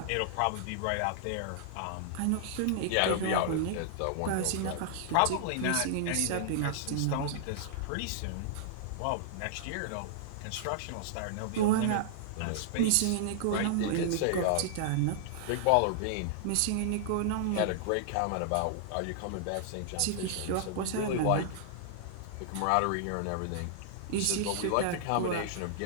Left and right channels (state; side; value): different; both; correlation -0.01